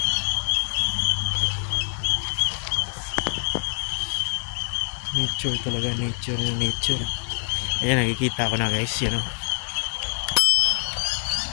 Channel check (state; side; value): silent; right; 60 dB below the other